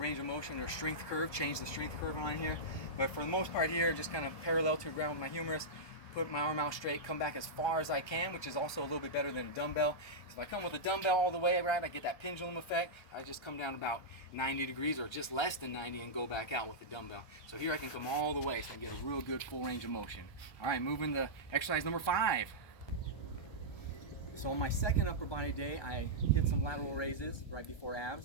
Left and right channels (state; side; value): late; right; 1.3 ms